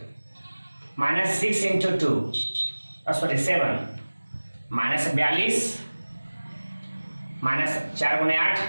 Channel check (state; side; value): inverted; both; correlation -1.00